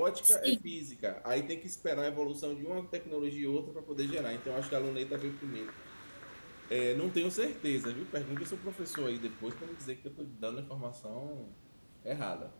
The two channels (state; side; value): inverted; both; correlation -1.00